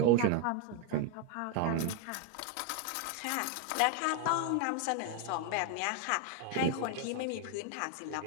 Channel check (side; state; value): both; different; correlation 0.01